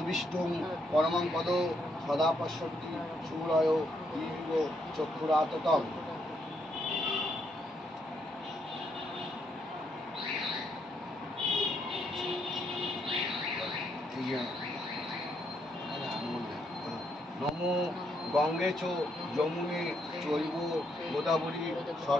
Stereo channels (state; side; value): normal; both; correlation 0.76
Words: পরমং পদ সদা পশ্যন্তি সূরয় ইব চক্ষুরাততম। নম গঙ্গে চ যমুনে চৈব গোদাবরী